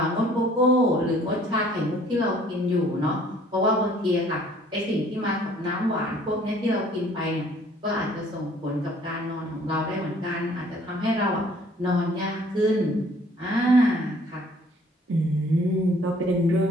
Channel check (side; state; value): both; normal; correlation 0.57